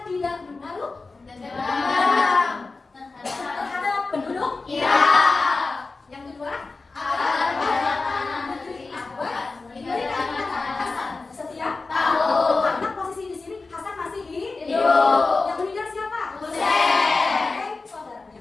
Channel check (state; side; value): quieter; right; 3.8 dB